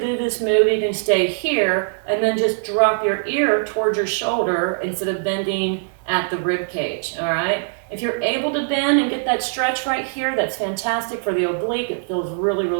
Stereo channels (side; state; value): left; silent; 65 dB below the other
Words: this move, you can stay here and then just drop your ear towards your shoulder instead of bending at the rib cage, all right? If you're able to bend and get that stretch right here, that's fantastic for the oblique. It feels really,